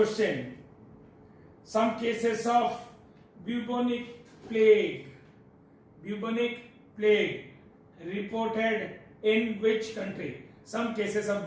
Some cases of bubonic plague reported in which country? Some cases of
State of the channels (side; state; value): both; identical; correlation 1.00